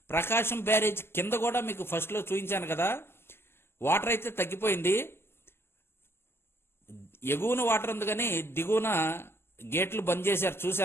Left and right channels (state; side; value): late; right; 0.12 ms